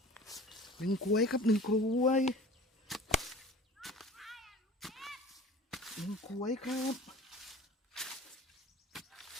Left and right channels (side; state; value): both; normal; correlation 0.42